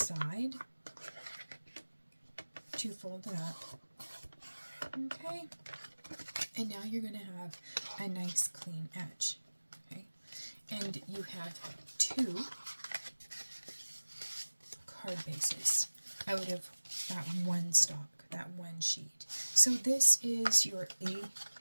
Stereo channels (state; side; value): inverted; both; correlation -1.00